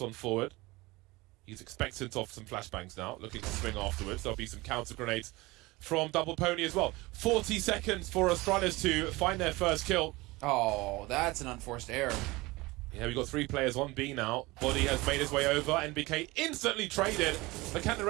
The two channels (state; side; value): quieter; left; 21.7 dB